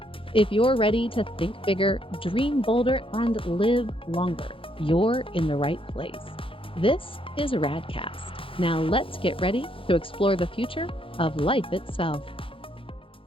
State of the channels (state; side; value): late; right; 0.26 ms